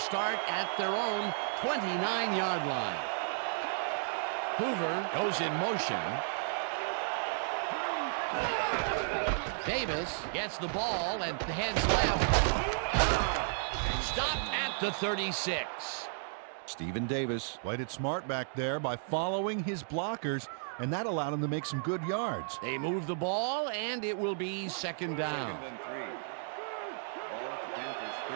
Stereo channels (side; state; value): left; silent; digital silence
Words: at their own 29-yard line. Hoover goes in motion. Davis gets the ball and heads left. Stopped at the 36. Stephen Davis Played it smart back there by following his blockers, and that allowed him to make some good yards. They move the ball, and it will be second down. Second and 3. Ball at the Panthers,